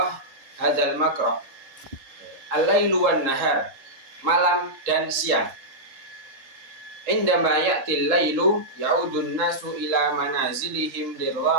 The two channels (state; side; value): late; left; 3.7 ms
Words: hadzal maqra' al-lailu wan nahar, malam dan siang. Indama ya'til lailu ya'udun nasu ila manazilihim